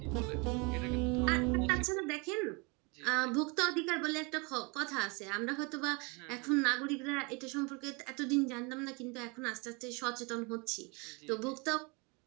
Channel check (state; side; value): quieter; left; 29.7 dB